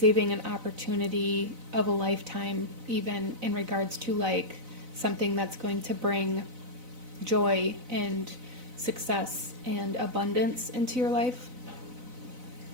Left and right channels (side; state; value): left; late; 4.0 ms